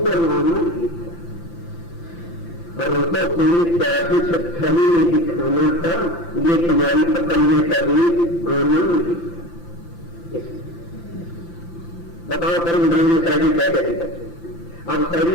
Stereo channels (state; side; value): late; right; 5.9 ms